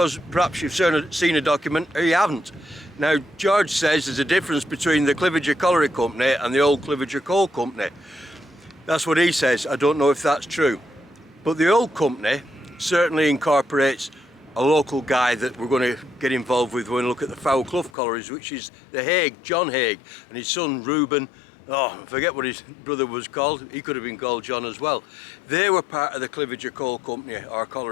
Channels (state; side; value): drops out; right; at 17.9 s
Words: perhaps you've seen a document or you haven't. Now, George says there's a difference between the Cliviger Colliery Company and the old Cliviger Coal Company. That's what he says. I don't know if that's true. But the old company certainly incorporates a local guy that we're going to get involved with when we look at the Foul Clough collieries, which is the Haig, John Haig, and his son Reuben oh, I forget what his brother was called. He could have been called John as well. They were part of the Cliviger Coal Company, or